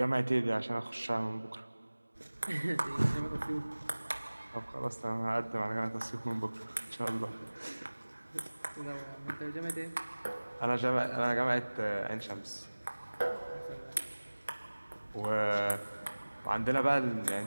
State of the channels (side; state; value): both; inverted; correlation -1.00